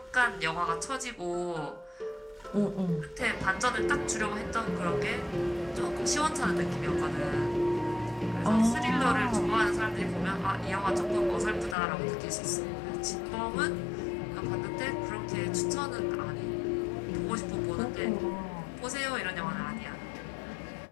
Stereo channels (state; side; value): drops out; right; at 11.8 s